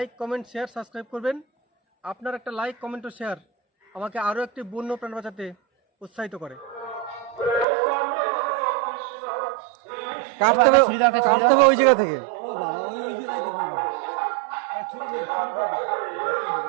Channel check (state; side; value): drops out; left; at 7.7 s